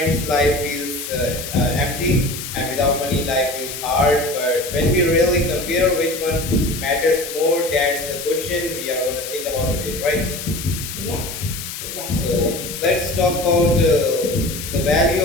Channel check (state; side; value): noise; left; hiss, 8 dB below the sound